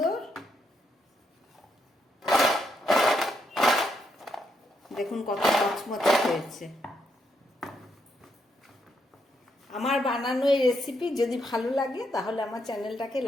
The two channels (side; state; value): both; normal; correlation 0.78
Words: দেখুন কত মচমচে হয়েছে। আমার বানানো এই রেসিপি যদি ভালো লাগে তাহলে আমার চ্যানেলটাকে